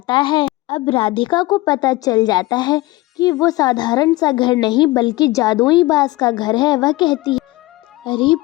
है। अब राधिका को पता चल जाता है कि वो साधारण सा घर नहीं बल्कि जादुई बांस का घर है। वह कहती है, अरे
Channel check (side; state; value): right; quieter; 19.7 dB